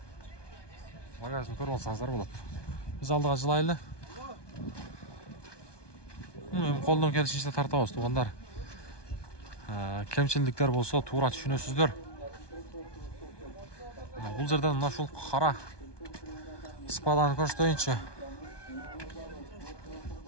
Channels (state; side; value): late; right; 1.2 ms